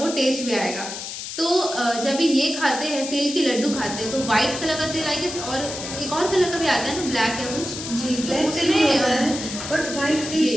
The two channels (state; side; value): noise; left; hiss, 8 dB below the sound